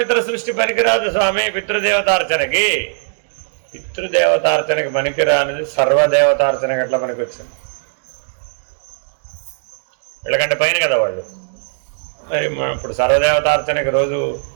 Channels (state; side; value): silent; left; digital silence